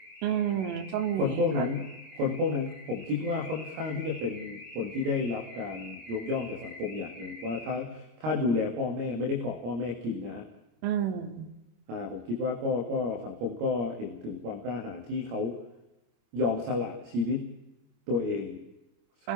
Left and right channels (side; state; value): left; late; 26 ms